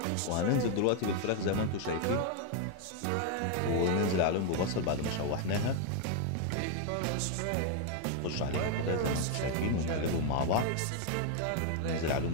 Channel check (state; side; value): different; both; correlation 0.01